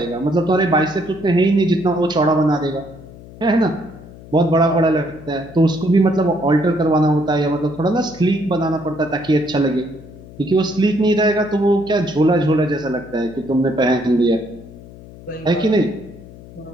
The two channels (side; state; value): left; noise; hum, 18 dB below the sound